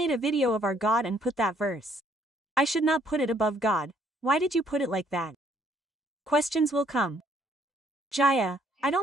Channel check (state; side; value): normal; both; correlation 0.65